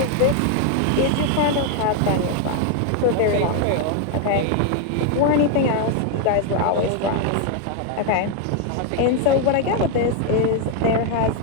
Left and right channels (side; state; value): both; different; correlation 0.01